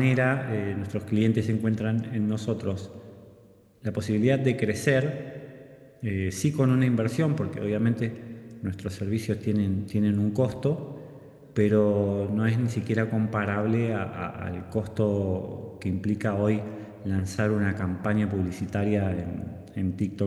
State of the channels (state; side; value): identical; both; correlation 1.00